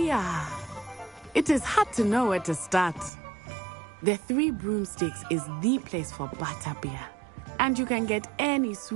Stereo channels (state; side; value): drops out; left; at 3.1 s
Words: are. It is hard to know where to start. The Three Broomsticks is the place for butterbeer. And you can get any